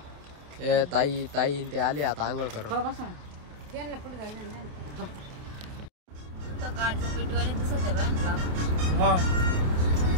ताई ते आले आता आंघोळ करून.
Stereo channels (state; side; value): late; left; 28 ms